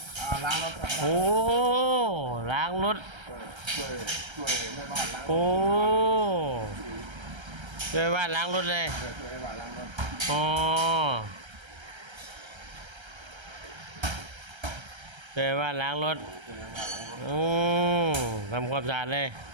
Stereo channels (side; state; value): left; late; 1.3 ms